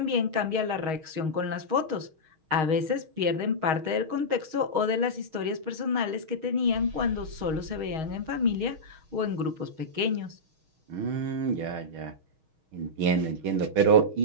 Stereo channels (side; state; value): left; late; 6.4 ms